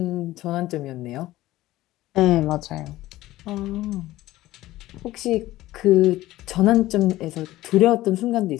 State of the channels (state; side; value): quieter; right; 16.3 dB